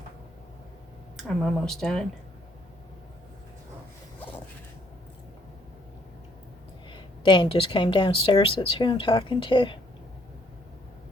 I'm almost done. Dan just came downstairs. That's who I'm talking to.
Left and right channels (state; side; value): normal; both; correlation 0.67